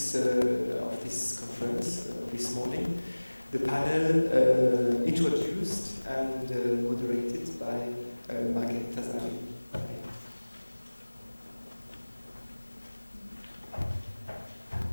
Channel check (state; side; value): inverted; both; correlation -1.00